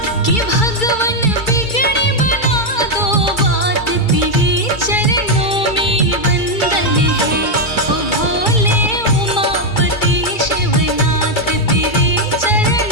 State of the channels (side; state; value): right; late; 2.3 ms